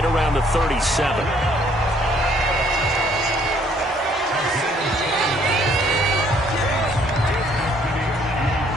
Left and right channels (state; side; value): normal; both; correlation 0.63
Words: around the 37.